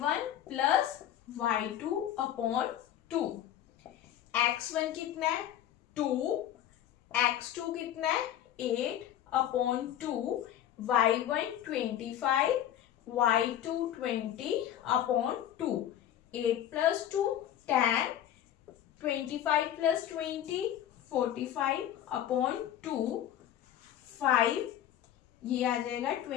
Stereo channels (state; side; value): quieter; right; 11.2 dB